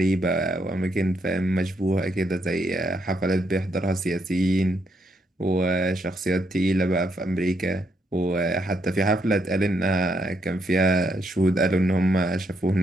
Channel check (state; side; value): normal; both; correlation 0.76